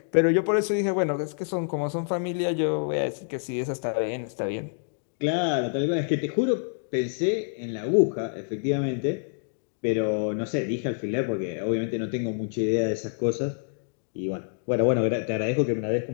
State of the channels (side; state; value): right; silent; digital silence